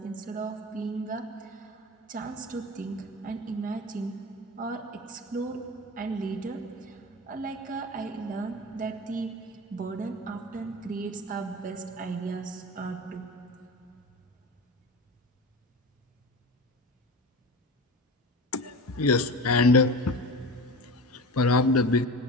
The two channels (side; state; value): both; normal; correlation 0.30